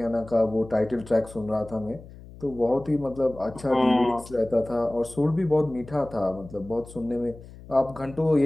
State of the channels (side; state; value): left; noise; hum, 18 dB below the sound